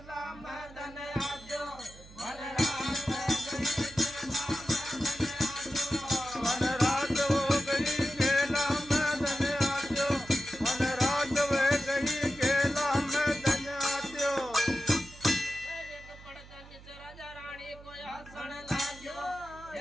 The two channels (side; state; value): right; noise; hum, 19 dB below the sound